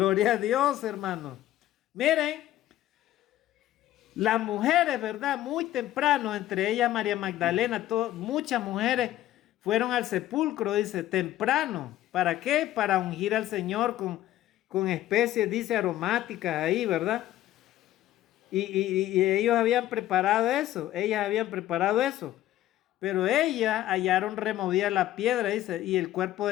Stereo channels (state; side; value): quieter; right; 13.9 dB